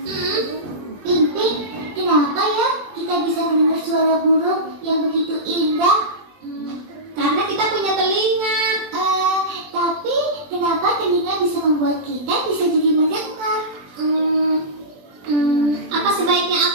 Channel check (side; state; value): left; late; 21 ms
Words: Ping-ping, kenapa ya kita bisa mendengar suara burung yang begitu indah? Karena kita punya telinga. Tapi kenapa telinga bisa membuat kita bisa jadi mendengar? Apa sebaiknya